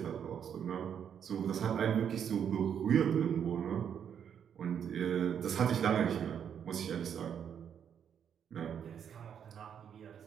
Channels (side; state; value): left; quieter; 8.3 dB